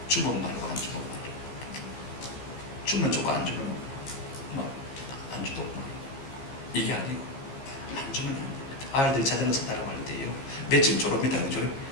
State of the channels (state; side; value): late; right; 15 ms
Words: 주면 말고 안 주면 말고 주면 주고 안 주면 안 주도 이게 아니고 안 주면 안 됩니다. 아이들이 자전거 산다고 할 때요 며칠 졸업니다. 그죠?